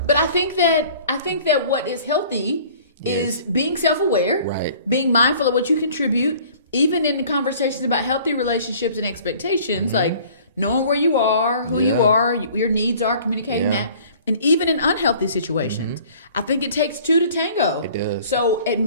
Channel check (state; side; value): inverted; both; correlation -0.51